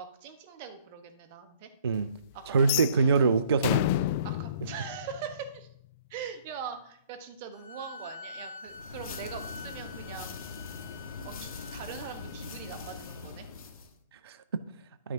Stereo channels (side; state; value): both; inverted; correlation -0.56